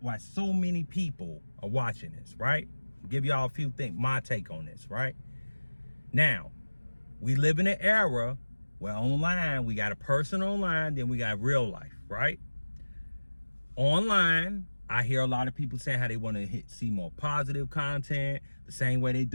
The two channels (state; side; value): inverted; both; correlation -1.00